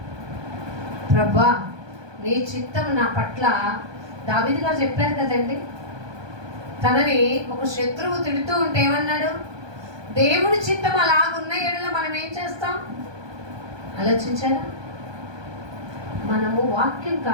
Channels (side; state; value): left; late; 1.2 ms